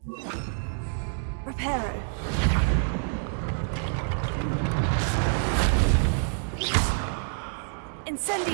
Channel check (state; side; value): silent; left; 59 dB below the other